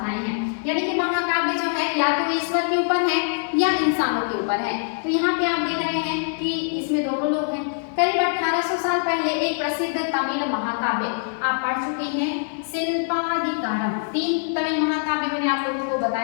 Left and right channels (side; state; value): right; silent; digital silence